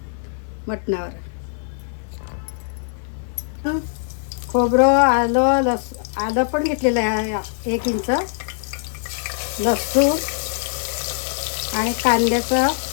मटणावर। खोबरं, आलं पण घेतलेलं आहे 1 इंच, लसूण आणि कांद्याचं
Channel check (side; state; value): right; silent; 57 dB below the other